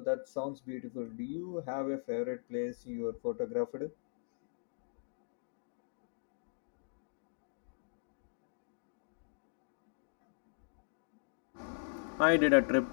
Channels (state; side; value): silent; right; digital silence